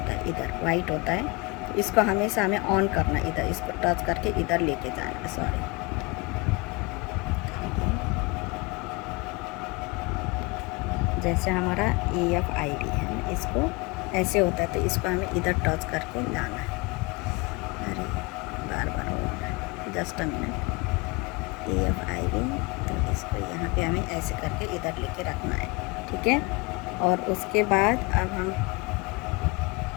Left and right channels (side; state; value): right; quieter; 26.7 dB